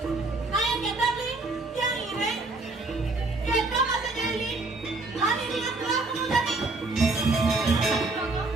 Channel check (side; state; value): left; quieter; 3.3 dB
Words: Kayak kita beli, yang ire. Kita masih jadi. Hari dengan telah kemudian nih.